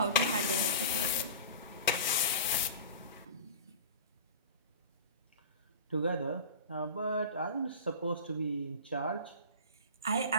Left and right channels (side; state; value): both; inverted; correlation -0.34